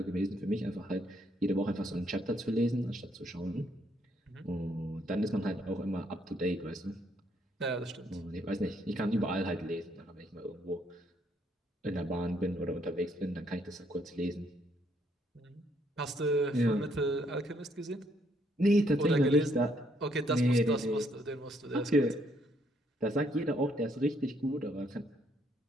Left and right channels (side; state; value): both; normal; correlation 0.70